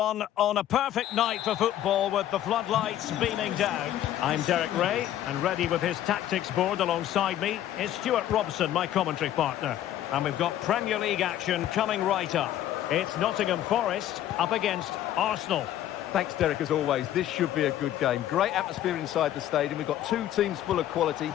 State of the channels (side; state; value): right; quieter; 12.2 dB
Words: on a perfect night for football with the floodlights beaming down. I'm Derek Ray, and ready with his tactics board alongside me is Stuart Robson, my commentary partner. And we've got Premier League action coming right up. It's Nottingham Forest up against Arsenal. Thanks, Derek, as always. This should be a good game. Great atmosphere inside the stadium. We've got two teams full of quality,